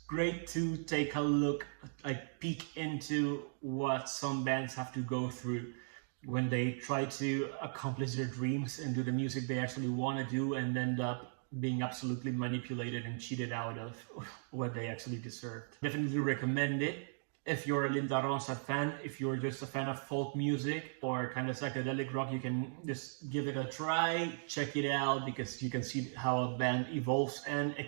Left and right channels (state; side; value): silent; left; digital silence